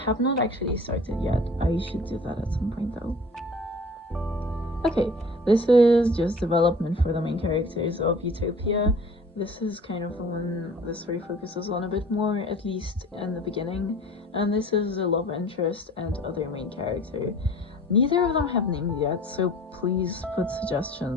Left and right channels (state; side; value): normal; both; correlation 0.46